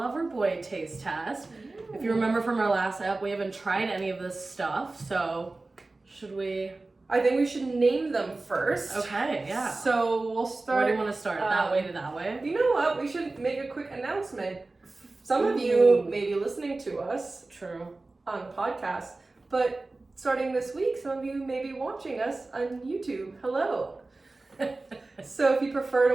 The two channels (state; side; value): quieter; left; 3.3 dB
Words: taste test. Ooh. If you remember from our last ep, we haven't tried any of this stuff, so should we? I think we should name them first. Okay, yeah. So we'll start. Where do you want to start? That way to that way? You know what? We should make a quick announcement. Some of you may be listening to us. True. On podcasts, but starting this week, some of you may be watching us on YouTube. Hello. So if you